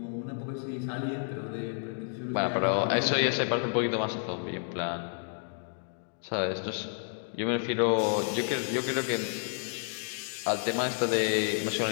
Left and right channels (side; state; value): right; silent; 57 dB below the other